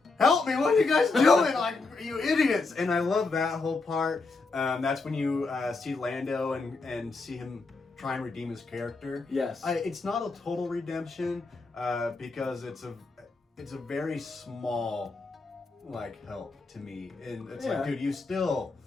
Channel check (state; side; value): quieter; right; 3.8 dB